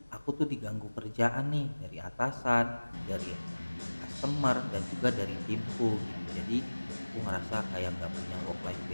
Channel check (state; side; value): inverted; both; correlation -1.00